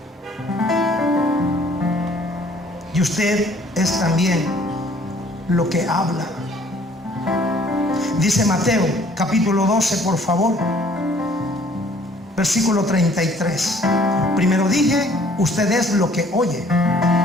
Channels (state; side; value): normal; both; correlation 0.58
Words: Y usted es también lo que habla. Dice Mateo capítulo 12, por favor, versículo 33. Primero dije, usted es lo que oye,